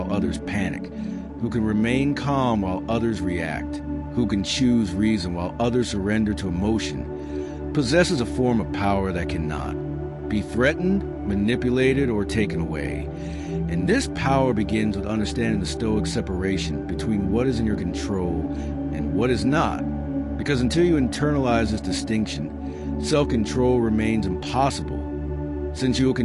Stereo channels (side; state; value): both; identical; correlation 1.00